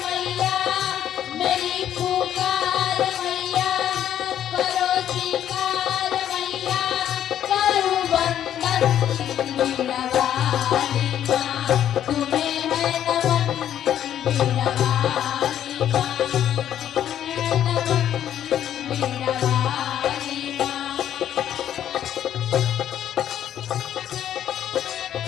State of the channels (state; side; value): quieter; right; 10.6 dB